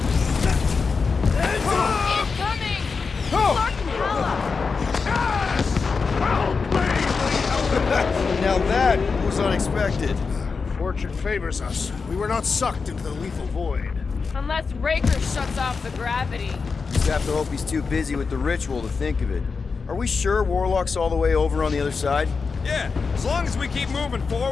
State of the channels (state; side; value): quieter; right; 4.9 dB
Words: Incoming! Now that was unexpected. Fortune favors us. We were not sucked into the lethal void. Unless Raker shuts off the gravity. Just have to hope he's too busy with the ritual to think of it. Are we sure Warlock's all the way over on the other side? Yeah, as long as we keep moving